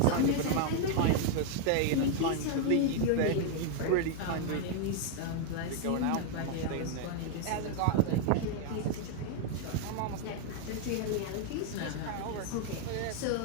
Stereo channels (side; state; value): both; different; correlation 0.00